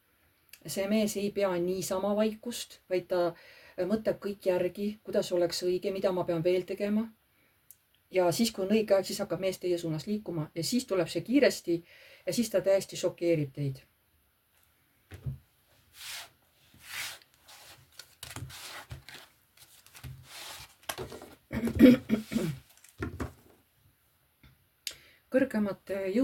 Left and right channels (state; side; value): identical; both; correlation 1.00